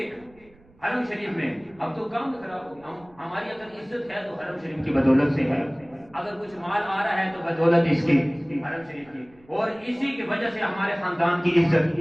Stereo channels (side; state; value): right; noise; rumble, 28 dB below the sound